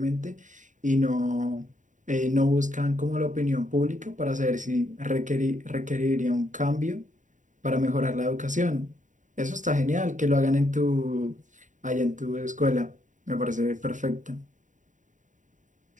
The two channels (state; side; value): late; left; 0.36 ms